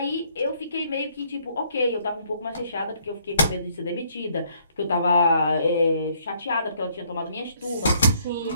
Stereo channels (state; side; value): inverted; both; correlation -0.67